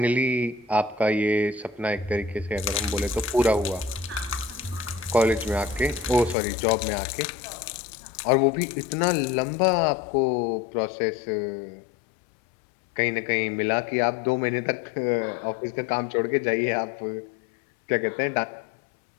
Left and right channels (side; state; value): right; drops out; at 6.4 s